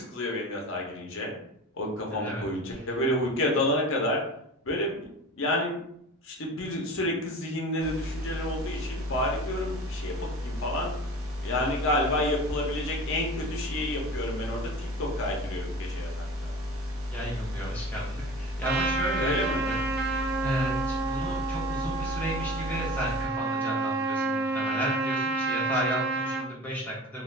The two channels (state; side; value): normal; both; correlation 0.36